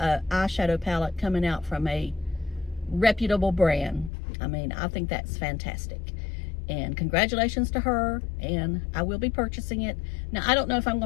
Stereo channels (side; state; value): right; drops out; at 4.1 s